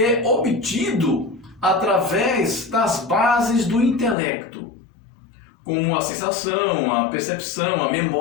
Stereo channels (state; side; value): drops out; right; at 4.2 s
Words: é obtido através das bases do intelecto, como a sensação, a percepção, a